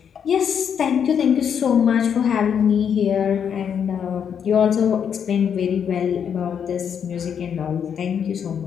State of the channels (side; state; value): right; quieter; 7.8 dB